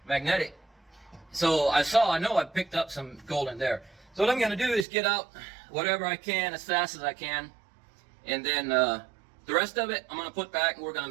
magnetic. So I know I picked up some gold in there. So what I'm going to do is get out whatever I can as fast as I can. And then the rest of it I'm going to put back and we're going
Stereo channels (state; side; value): drops out; left; at 4.9 s